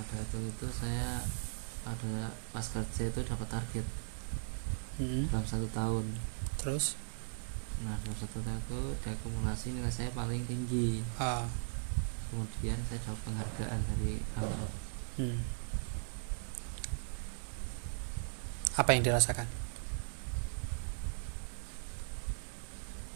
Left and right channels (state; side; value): silent; left; 52 dB below the other